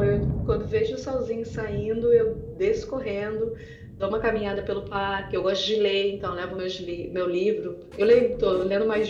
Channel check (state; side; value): identical; both; correlation 1.00